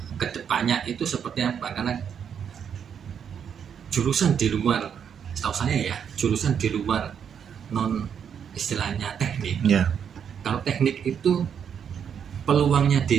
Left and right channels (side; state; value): left; quieter; 7.8 dB